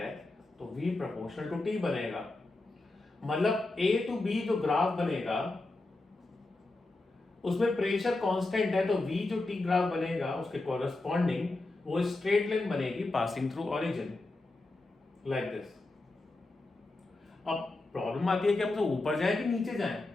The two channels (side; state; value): right; quieter; 3.0 dB